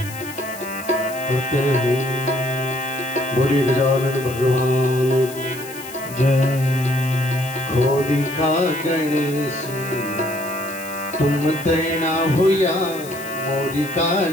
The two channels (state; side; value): noise; left; hiss, 14 dB below the sound